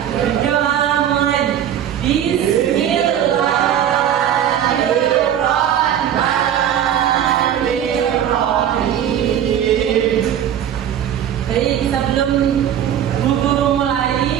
Berdoa mulai. Bismillahirrahmanirrahim. Baik, sebelum guru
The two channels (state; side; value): quieter; left; 10.0 dB